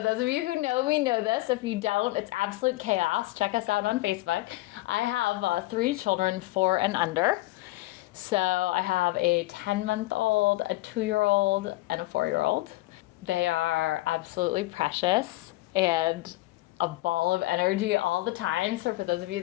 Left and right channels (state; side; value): quieter; right; 19.2 dB